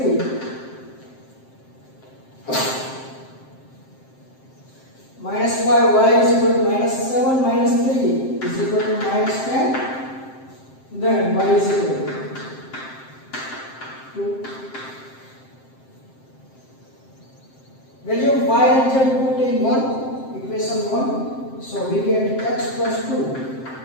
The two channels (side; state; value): right; late; 7.6 ms